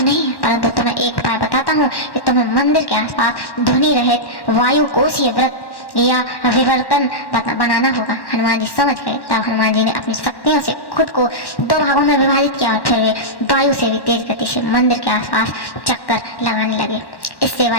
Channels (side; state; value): right; late; 1.1 ms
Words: नहीं है, परंतु तुम्हें एक उपाय बताता हूँ कि तुम्हें मंदिर के आसपास ध्वनि रहित वायु कोशीय व्रत या विवर्तन बनाना होगा। हनुमान जी समझ गए। तब हनुमान जी ने अपनी शक्तियों से खुद को 2 भागों में विभाजित किया और फिर वे वायु से भी तेज गति से मंदिर के आसपास चक्कर लगाने लगे। इससे